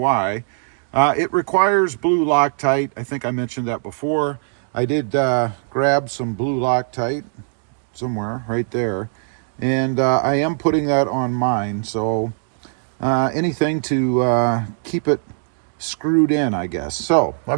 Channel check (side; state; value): left; silent; digital silence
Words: it requires blue Loctite. I think I mentioned that before. I did grab some blue Loctite somewhere right there, And I am putting that on mine, so anything to keep it screwed in, I guess. So